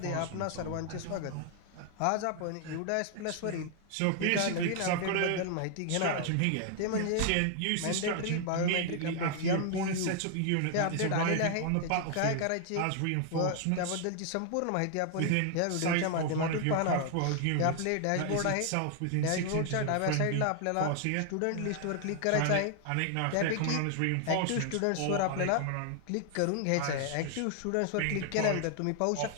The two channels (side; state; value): both; different; correlation 0.00